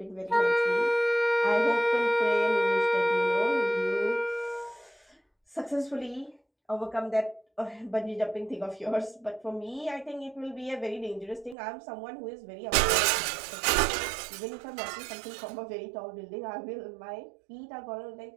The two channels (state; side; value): drops out; left; at 11.6 s